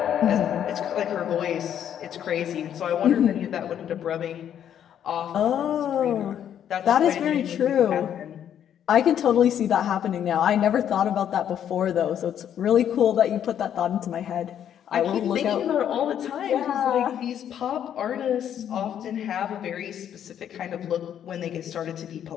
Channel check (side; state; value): right; quieter; 9.7 dB